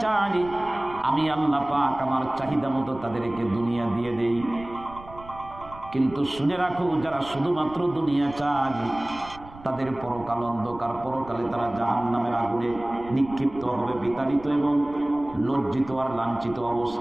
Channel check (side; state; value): right; noise; rumble, 18 dB below the sound